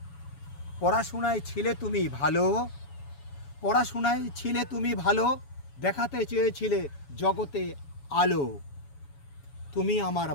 পড়াশোনায় ছিলে তুমি ভালো, পড়াশোনায় ছিলে তুমি ভালো, দেখাতে চেয়েছিলে জগতে আলো। তুমি আমার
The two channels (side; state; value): right; late; 7.1 ms